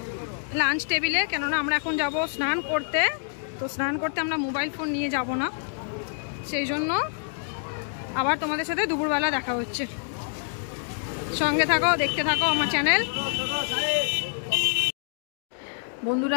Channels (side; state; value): right; silent; digital silence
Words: লাঞ্চ টেবিলে। কেননা আমরা এখন যাব স্নান করতে, তো স্নান করতে আমরা মোবাইল ফোন নিয়ে যাব না, সেই জন্য আবার তোমাদের সাথে দুপুরবেলা দেখা হচ্ছে। সঙ্গে থাকো, দেখতে থাকো আমার চ্যানেল।